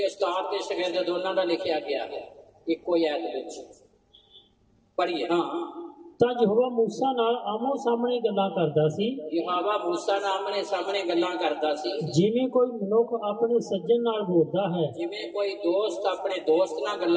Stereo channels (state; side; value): identical; both; correlation 1.00